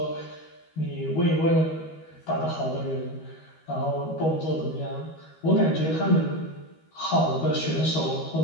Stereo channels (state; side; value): late; right; 13 ms